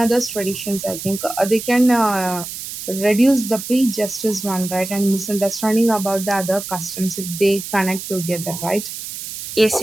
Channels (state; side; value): noise; right; hiss, 9 dB below the sound